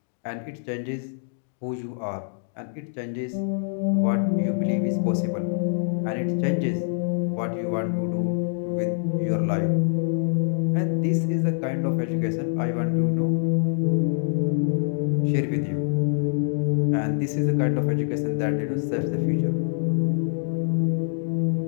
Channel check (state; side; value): silent; right; digital silence